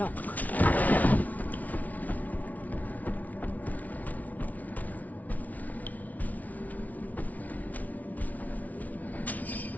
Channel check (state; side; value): late; right; 0.074 ms